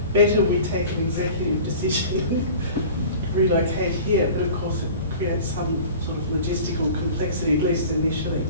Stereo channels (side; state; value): both; inverted; correlation -0.41